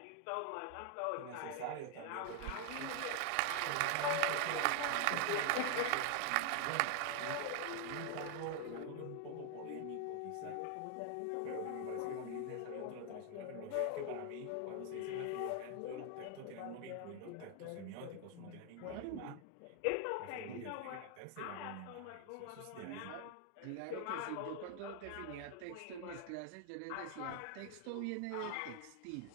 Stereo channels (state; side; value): different; both; correlation 0.00